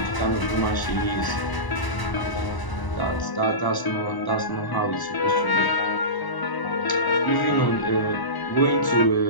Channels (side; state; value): right; late; 1.0 ms